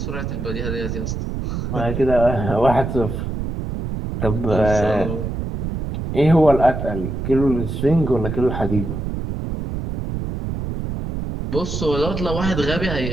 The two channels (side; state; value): right; noise; rumble, 4 dB below the sound